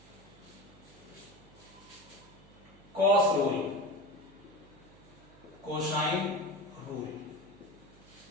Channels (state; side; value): noise; right; hum, 23 dB below the sound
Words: कॉस रूल, कोसाइन रूल,